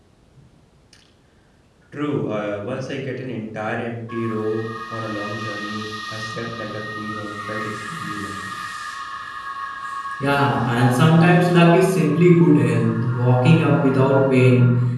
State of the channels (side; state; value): both; identical; correlation 1.00